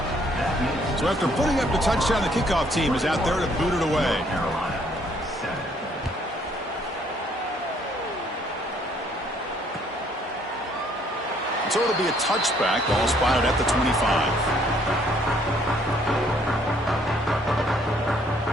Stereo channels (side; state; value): both; normal; correlation 0.65